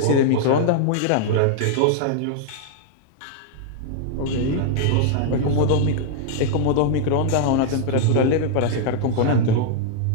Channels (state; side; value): different; both; correlation -0.01